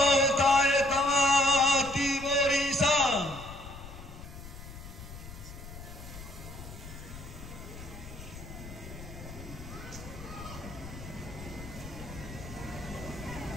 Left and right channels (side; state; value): left; noise; rumble, 13 dB below the sound